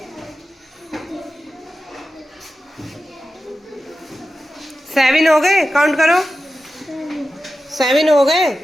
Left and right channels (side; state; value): both; normal; correlation 0.93